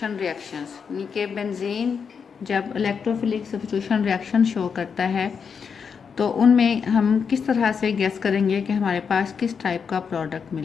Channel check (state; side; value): quieter; right; 6.3 dB